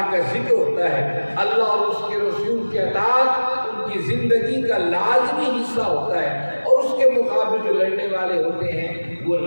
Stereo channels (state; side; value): inverted; both; correlation -1.00